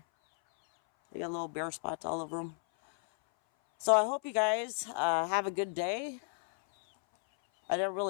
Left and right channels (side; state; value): right; silent; 56 dB below the other